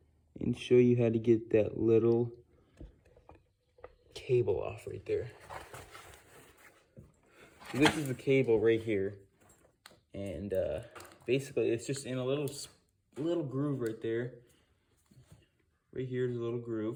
and show you how to get that little cable off right there. So this is the cable right here, and basically it's just in a little groove right there. Right here is a little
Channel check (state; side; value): identical; both; correlation 1.00